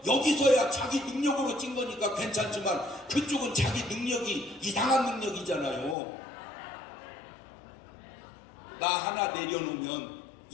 여기서야 자기 능력으로 찐 거니까 괜찮지만 그쪽은 자기 능력이 이상한 능력이잖아요. 나 하나 내려놓으면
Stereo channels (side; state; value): right; drops out; at 6.0 s